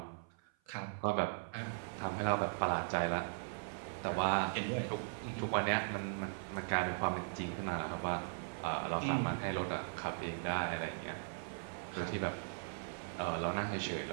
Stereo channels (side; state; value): left; silent; 52 dB below the other